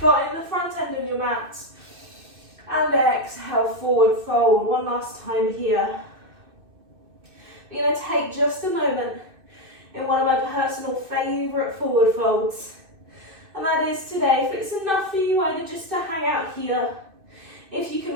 the front end of your mat. And exhale, forward fold. 1 last time here. We're going to take just a moment in one of my personal favourite forward folds. And that is today, if it's enough for you either just to hang out here, if you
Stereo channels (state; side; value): late; left; 2.6 ms